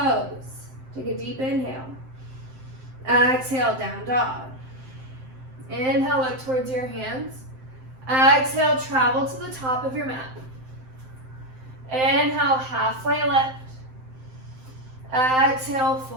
Take a deep inhale. Exhale, down dog. Inhale, look towards your hands. Exhale, travel to the top of your mat. Inhale, halfway lift. Exhale,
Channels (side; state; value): left; late; 7.7 ms